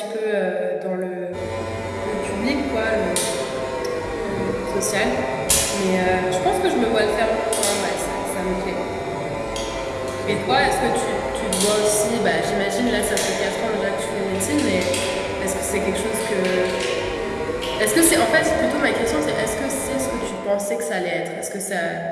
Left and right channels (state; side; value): identical; both; correlation 1.00